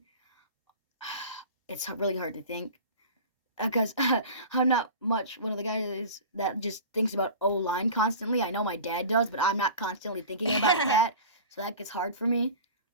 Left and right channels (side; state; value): both; inverted; correlation -0.37